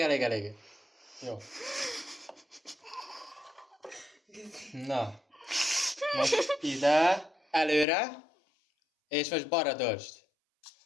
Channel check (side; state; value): right; drops out; at 7.9 s